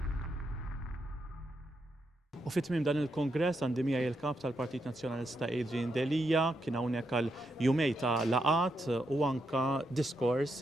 U fit-tmiem dan il-kongress għandi miegħi il-kap tal-Partit Nazzjonalista Adrian Delija kien hawnhekk għal jumej ta' laqat u anka diskors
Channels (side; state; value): both; normal; correlation 0.82